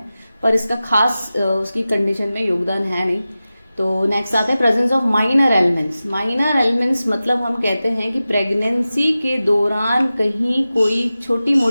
पर इसका खास उसकी कंडीशन में योगदान है नहीं। तो नेक्स्ट आता है presence of minor elements. Minor elements मतलब हम कहते हैं कि प्रेगनेंसी के दौरान कहीं कोई छोटी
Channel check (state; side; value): inverted; both; correlation -0.95